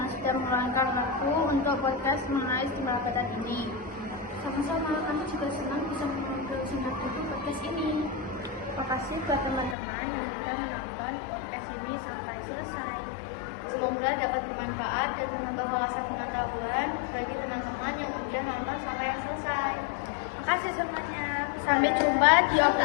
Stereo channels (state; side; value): drops out; right; at 9.8 s